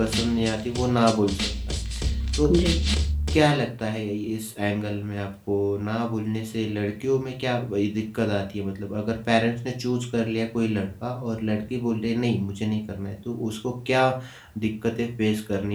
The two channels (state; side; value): identical; both; correlation 1.00